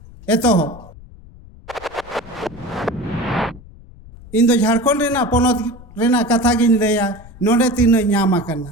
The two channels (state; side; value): noise; left; rumble, 20 dB below the sound